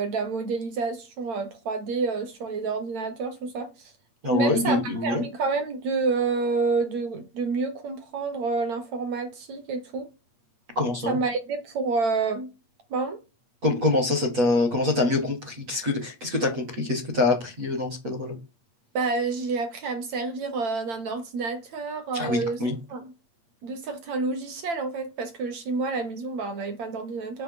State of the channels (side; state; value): left; late; 8.8 ms